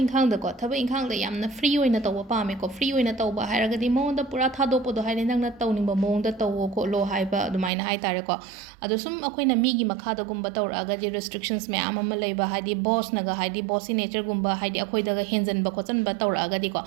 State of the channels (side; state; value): left; drops out; at 7.7 s